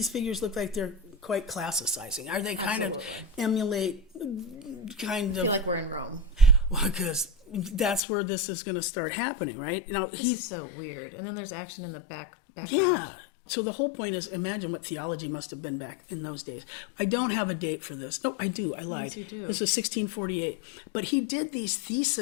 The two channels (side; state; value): right; drops out; at 8.0 s